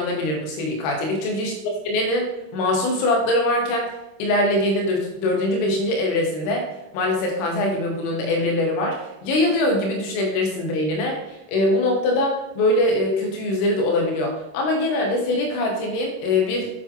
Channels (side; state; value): right; late; 26 ms